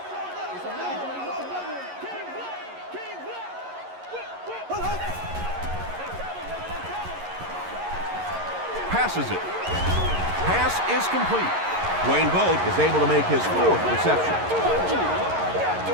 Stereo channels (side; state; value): left; late; 11 ms